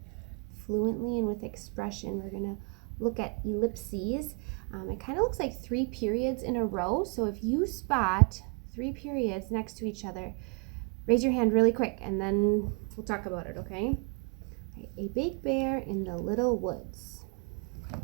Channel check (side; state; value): left; quieter; 37.6 dB